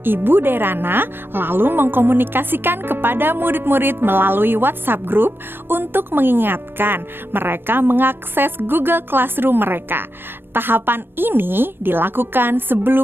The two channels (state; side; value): late; left; 0.10 ms